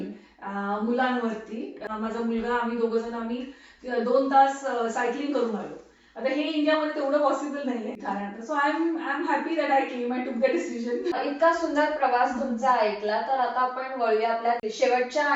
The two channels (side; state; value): both; identical; correlation 1.00